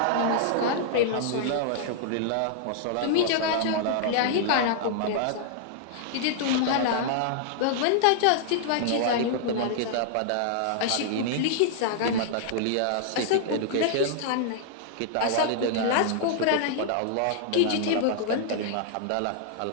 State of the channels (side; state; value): both; different; correlation -0.01